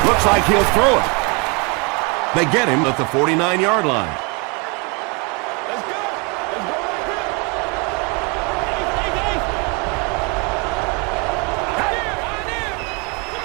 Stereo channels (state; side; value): quieter; left; 30.8 dB